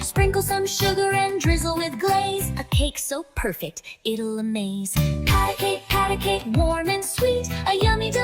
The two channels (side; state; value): both; identical; correlation 1.00